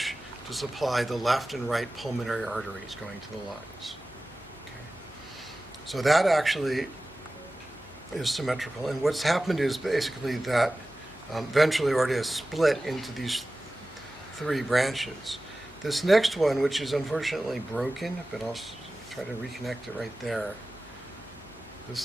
to supply the left and right pulmonary arteries going to the lungs. Okay. So that actually is symmetrical. And what's happened is basically that ventral aorta is split into these three branches. This next one, which is unfortunately broken, but I'll try to reconnect it right there.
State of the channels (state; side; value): noise; left; hum, 24 dB below the sound